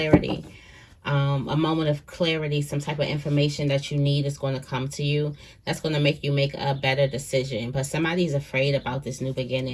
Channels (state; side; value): identical; both; correlation 1.00